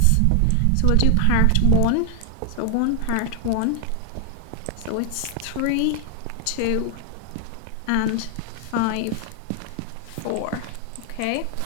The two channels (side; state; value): both; different; correlation 0.00